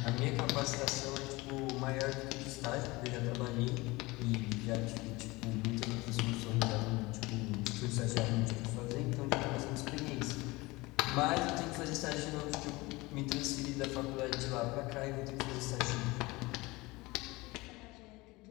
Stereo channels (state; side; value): quieter; right; 22.2 dB